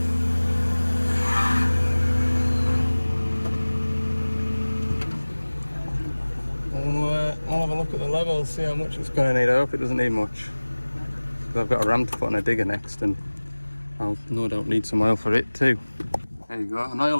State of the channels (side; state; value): both; inverted; correlation -1.00